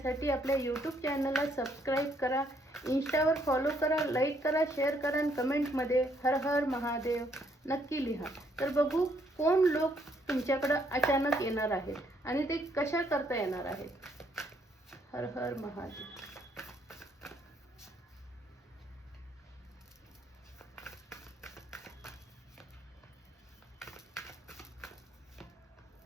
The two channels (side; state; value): both; normal; correlation 0.70